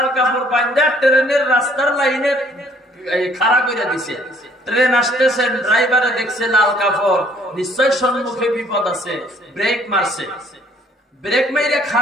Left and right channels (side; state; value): both; normal; correlation 0.61